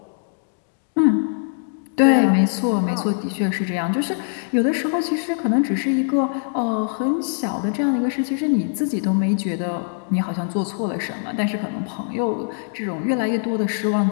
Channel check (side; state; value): right; silent; digital silence